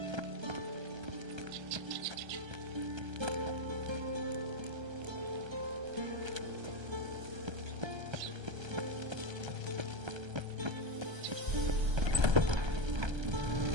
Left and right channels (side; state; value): left; late; 1.3 ms